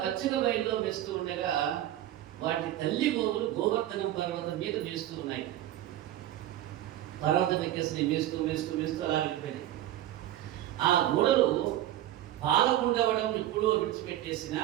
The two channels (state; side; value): quieter; left; 13.3 dB